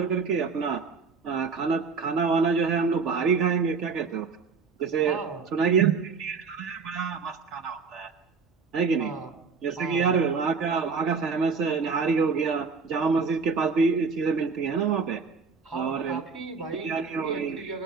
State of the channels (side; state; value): left; quieter; 5.1 dB